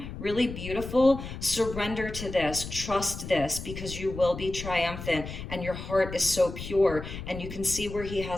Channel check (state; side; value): noise; left; rumble, 9 dB below the sound